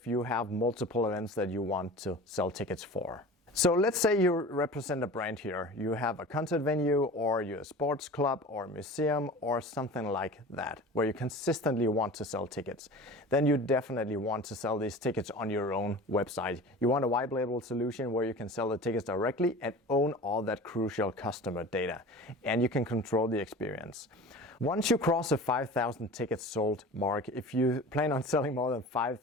you have multiple events that you want to sell tickets for. So let's say you represent a brand here. You have a concert venue, or you're a sports club or a museum or something like that, where you consistently want to sell tickets. Then you definitely want to sell these tickets on your own website. You want a white label solution where you can sell the tickets directly and own all that crucial customer data, and you can control the experience. Once you cross the 5,000 tickets sold mark, if you plan on selling more than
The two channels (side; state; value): both; normal; correlation 0.38